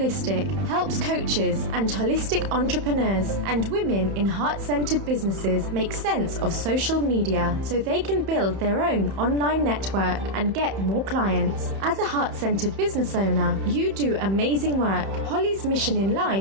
helps coaches and holistic entrepreneurs and women in heart-centered businesses make sense of social media so they can build their own online network and get more clients. As a heart-centered business owner, you do amazing work. Holly's mission in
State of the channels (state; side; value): late; left; 31 ms